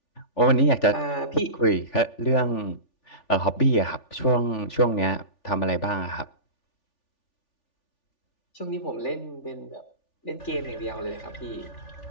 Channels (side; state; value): right; late; 3.4 ms